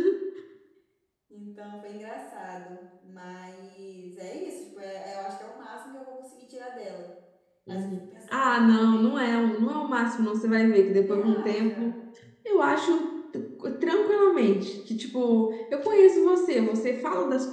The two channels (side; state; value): both; identical; correlation 1.00